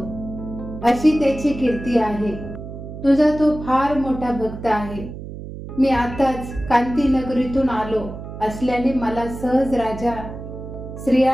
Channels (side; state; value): right; noise; hum, 11 dB below the sound